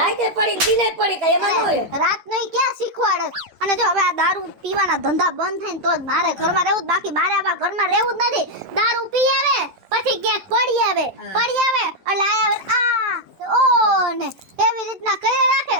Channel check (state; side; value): late; left; 12 ms